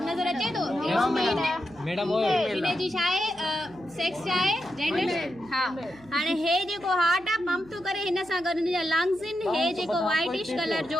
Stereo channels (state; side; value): noise; right; hum, 24 dB below the sound